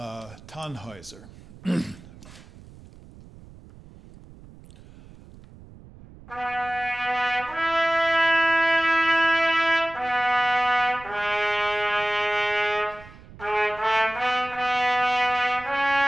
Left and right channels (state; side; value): noise; right; rumble, 20 dB below the sound